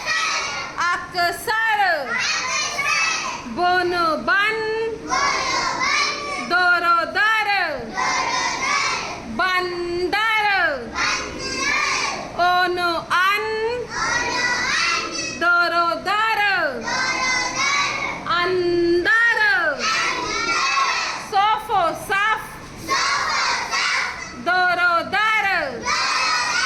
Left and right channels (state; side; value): identical; both; correlation 1.00